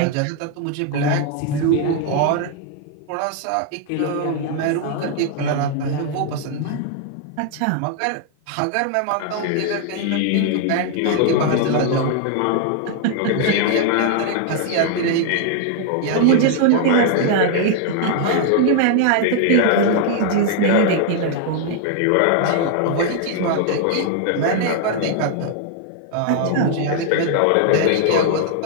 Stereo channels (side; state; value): both; different; correlation 0.00